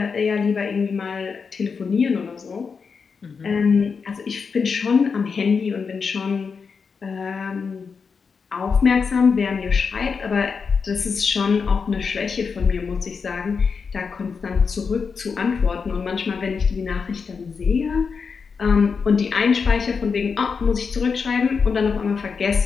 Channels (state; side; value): quieter; right; 5.5 dB